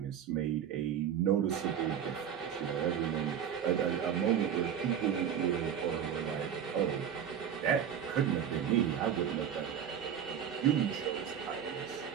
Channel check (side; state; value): left; quieter; 8.8 dB